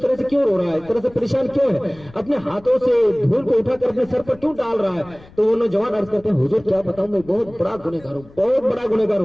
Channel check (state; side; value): noise; left; rumble, 23 dB below the sound